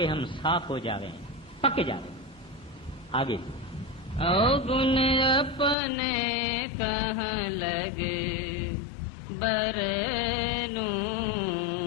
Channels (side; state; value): right; drops out; at 5.8 s